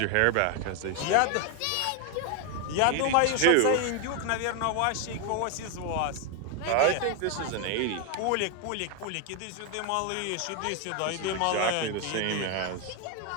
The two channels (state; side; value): different; both; correlation 0.01